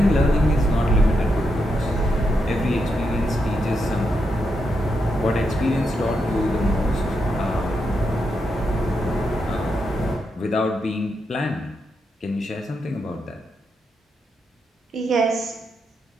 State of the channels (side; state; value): both; normal; correlation 0.83